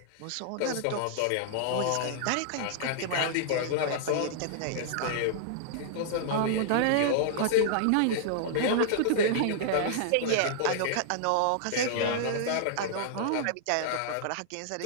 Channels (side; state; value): both; different; correlation -0.01